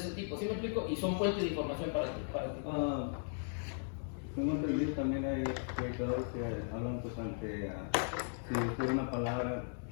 tipo, ¿sí me explico? Y son fuentes de información para ti. Tengo entendido también hay predicadores que hablan pues ante, si usted una palabra,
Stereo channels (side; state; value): right; silent; digital silence